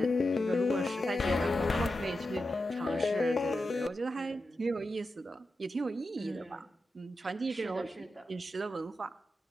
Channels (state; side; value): normal; both; correlation 0.90